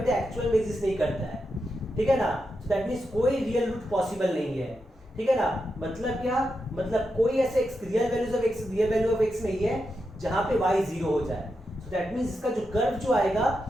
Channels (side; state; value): both; normal; correlation 0.86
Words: एक्चुअल में एग्जिस्ट नहीं करता है। ठीक है ना, सो दैट मींस कोई रियल रूट पॉसिबल नहीं है। ठीक है ना, मतलब क्या? मतलब कोई ऐसे रियल वैल्यू ऑफ x नहीं है जहां पे y जीरो हो जाए। सो दैट मींस इसका जो कर्व जो आएगा